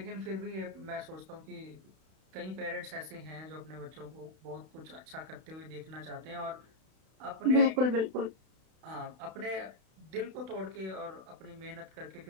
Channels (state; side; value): late; left; 32 ms